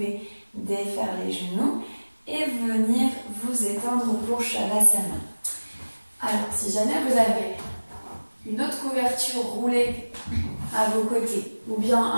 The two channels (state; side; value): inverted; both; correlation -1.00